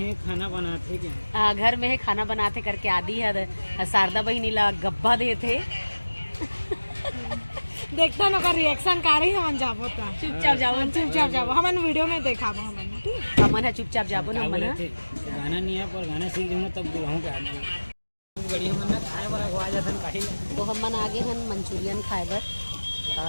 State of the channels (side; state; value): both; inverted; correlation -1.00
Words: खाना बनाते क्या? घर में है खाना बनाते करके आदि है शारदा बहिनी ला गब्बा देते देखता ना का रिएक्शन का रही हमन जाबो ता चुपचाप जाओ हमन वीडियो में देखाबो हमन ठीक हमन है चुपचाप जाबो ना क्या हमन बोले है। थे? गाना नहीं है पर गाना सीख जाऊंगा तब बुलाऊँ क्या आदमी बढ़िया मन खाए वाला खवा जाता काहे तो हमन आगे हन मंचूरियन खाए बर